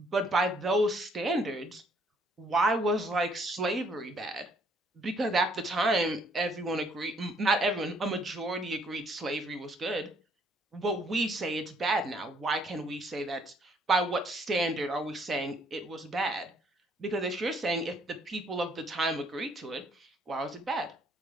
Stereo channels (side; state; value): both; normal; correlation 0.66